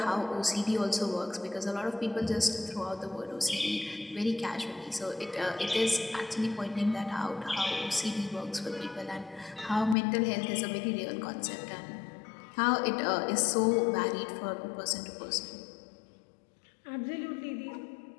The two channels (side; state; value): right; drops out; at 10.0 s